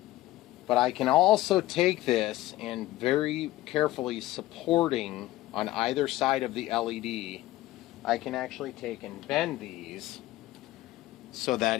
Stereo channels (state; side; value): quieter; right; 16.4 dB